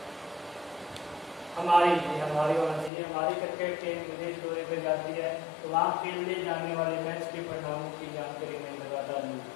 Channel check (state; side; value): drops out; right; at 2.9 s